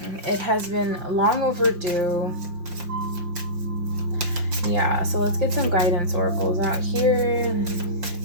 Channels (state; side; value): late; left; 5.7 ms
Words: It has been long overdue. Yeah, so let's get some guidance oracles out here.